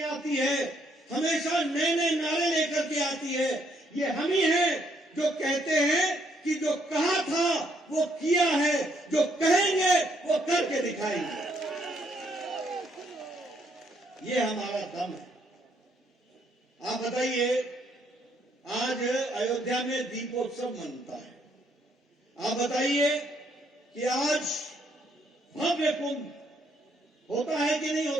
आती है, हमेशा नए नए नारे लेकर के आती है। ये हम ही हैं जो कहते हैं कि जो कहा था वो किया है, जो कहेंगे वो करके दिखाएंगे। ये हमारा दम है। आप बताइए, आज अयोध्या में दीपोत्सव मनता है। आप बताइए कि आज भव्य कुंभ होता है कि नहीं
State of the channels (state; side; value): normal; both; correlation 0.72